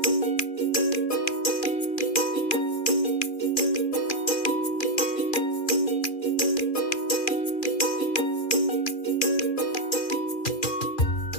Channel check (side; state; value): right; late; 2.4 ms